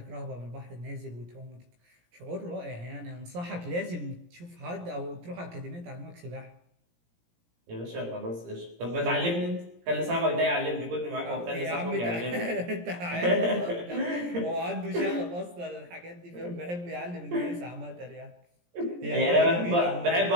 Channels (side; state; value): left; late; 17 ms